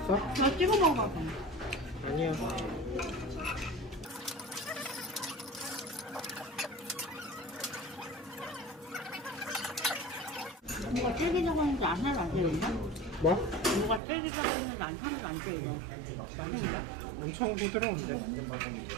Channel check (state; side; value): drops out; left; at 14.0 s